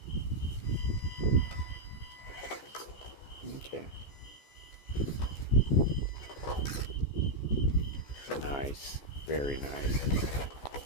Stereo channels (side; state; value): right; late; 14 ms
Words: Okay. Nice. Very nice.